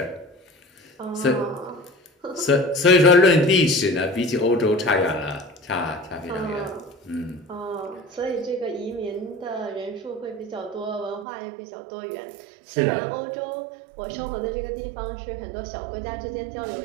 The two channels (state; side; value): drops out; left; at 11.2 s